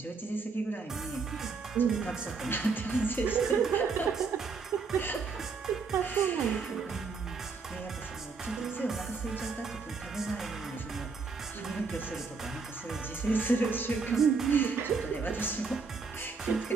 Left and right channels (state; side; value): quieter; left; 4.7 dB